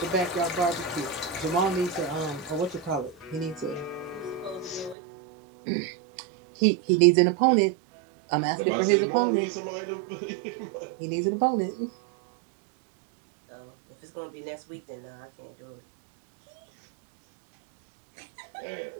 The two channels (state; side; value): drops out; left; at 5.0 s